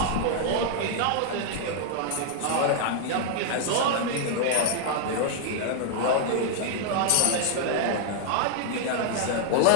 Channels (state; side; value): different; both; correlation 0.00